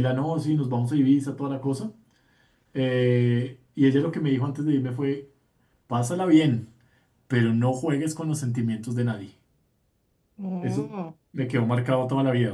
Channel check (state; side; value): identical; both; correlation 1.00